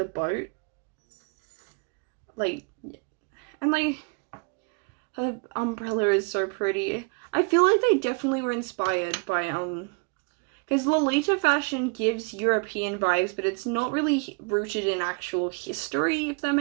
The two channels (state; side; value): quieter; left; 35.5 dB